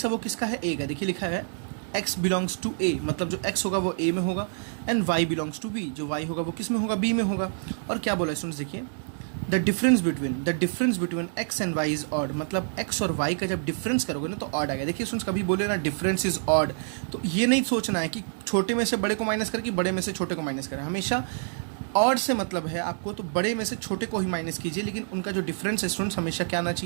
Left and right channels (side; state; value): left; silent; 60 dB below the other